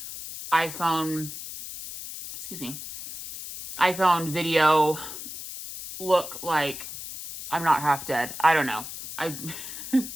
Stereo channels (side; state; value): left; noise; hiss, 10 dB below the sound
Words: iPhone video look like I'm not half dead. I don't know.